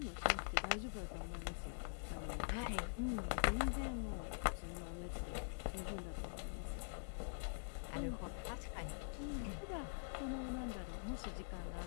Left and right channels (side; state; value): right; silent; digital silence